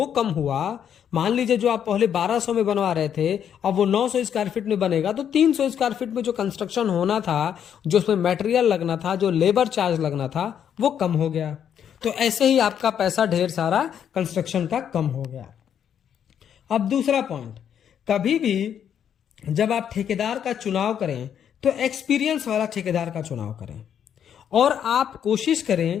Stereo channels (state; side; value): quieter; right; 8.9 dB